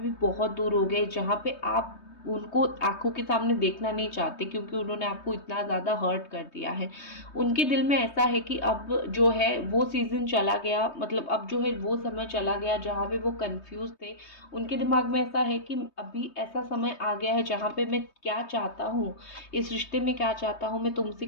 बहुत दूर हो गए, जहाँ पे आप उनको आंखों के सामने देखना नहीं चाहते, क्योंकि उन्होंने आपको इतना ज़्यादा हर्ट कर दिया है। उनके दिल में ऐसा है कि अब जो है वो सीज़न चला गया, मतलब अब जो है वो समय चला गया जहाँ पे वो कंफ्यूज थे। उनके दिमाग में ऐसा है कि अभी ऐसा समय आ गया है जहाँ पे मैं क्या चाहता हूँ, इस रिश्ते में क्या चाहता हूँ, मैं तुमसे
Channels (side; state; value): right; late; 3.2 ms